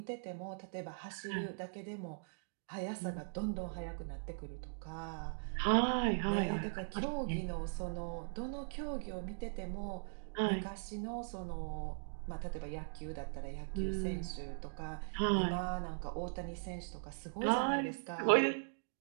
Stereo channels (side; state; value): left; silent; digital silence